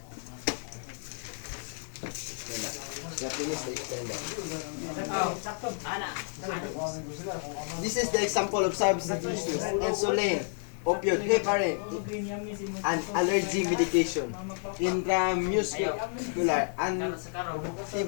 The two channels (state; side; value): silent; right; 57 dB below the other